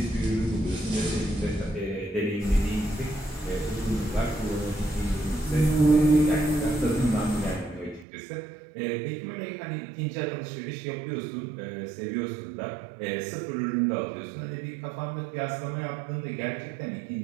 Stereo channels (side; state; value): left; drops out; at 8.1 s